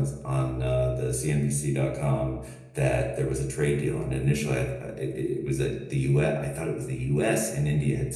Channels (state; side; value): identical; both; correlation 1.00